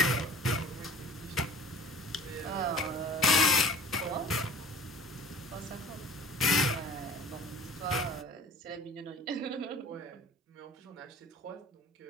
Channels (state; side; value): normal; both; correlation 0.44